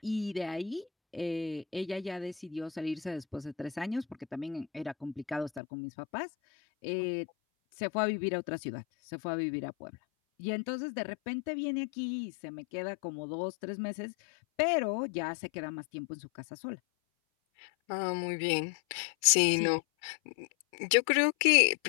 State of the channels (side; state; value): right; drops out; at 5.6 s